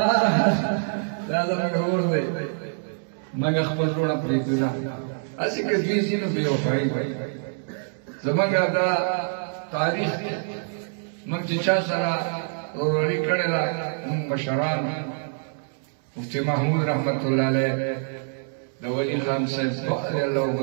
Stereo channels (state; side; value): silent; left; 62 dB below the other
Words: دا زموږ اور دی موږ خپل وروڼه پرېږدو نه هسې که دوی ځي نو بې وفایي وایي زموږ دا تاریخ دی موږ چې چا سره وروري کړې ده موږ مشران مفتي محمود رحمت الله علیه د ولي خان صاحب بخاري الله